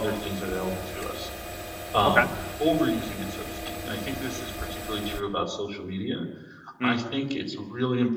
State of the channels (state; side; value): identical; both; correlation 1.00